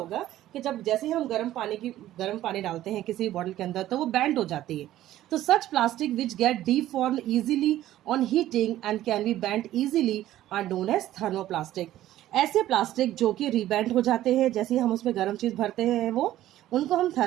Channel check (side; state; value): left; quieter; 13.8 dB